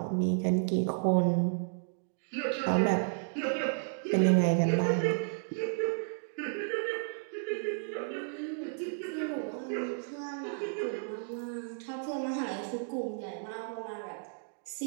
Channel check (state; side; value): silent; left; digital silence